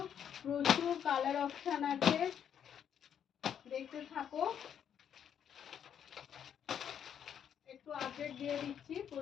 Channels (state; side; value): quieter; right; 8.8 dB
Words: প্রচুর কালার অপশান আছে, দেখতে থাকো। একটু আপডেট দিয়ে দিচ্ছি,